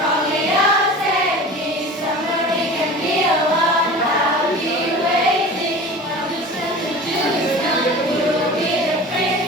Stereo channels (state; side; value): normal; both; correlation 0.37